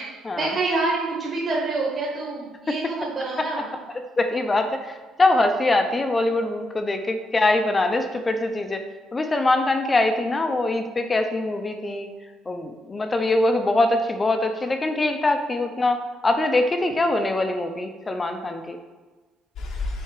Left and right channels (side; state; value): both; normal; correlation 0.84